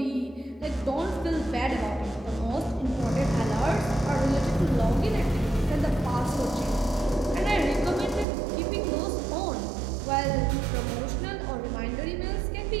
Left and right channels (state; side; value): drops out; left; at 8.2 s